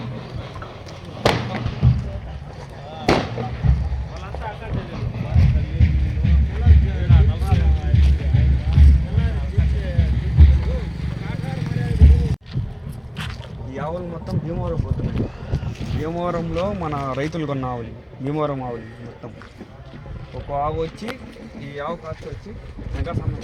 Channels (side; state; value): both; identical; correlation 1.00